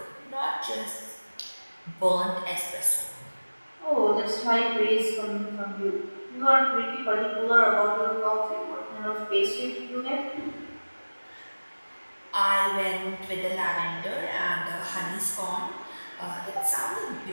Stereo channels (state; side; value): inverted; both; correlation -1.00